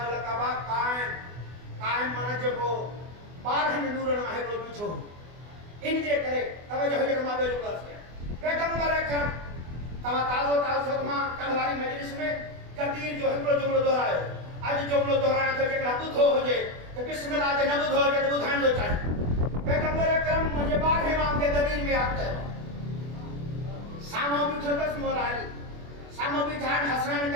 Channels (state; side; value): late; left; 24 ms